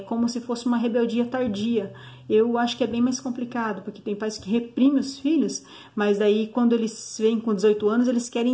como se fosse uma rebeldia tardia. Eu acho que é bem mais complicado, porque tem pais que reprimem os filhos, mas daí quando eles vêm com 18 anos, eles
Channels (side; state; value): both; identical; correlation 1.00